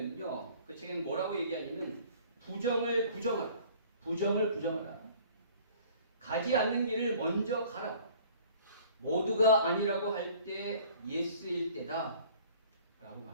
그 책에는 뭐라고 얘기하냐면 부정을 부정하라. 부정을 부정하라. 가지 않는 길을 먼저 가라. 모두가 아니라고 할 때 예스일 때다. 라고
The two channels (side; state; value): both; inverted; correlation -0.51